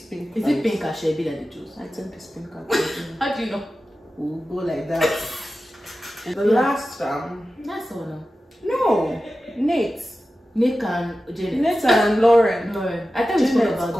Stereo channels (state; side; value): normal; both; correlation 0.94